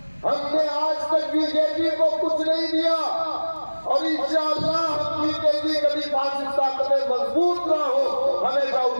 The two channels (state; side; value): inverted; both; correlation -1.00